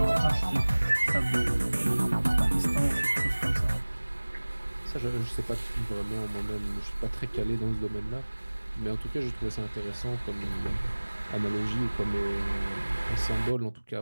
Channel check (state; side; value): inverted; both; correlation -1.00